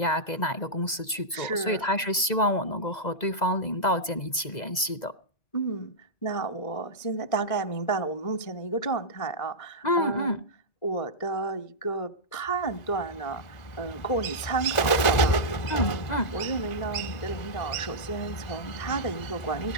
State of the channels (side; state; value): right; late; 2.0 ms